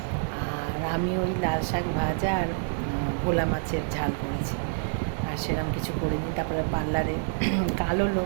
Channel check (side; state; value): left; silent; digital silence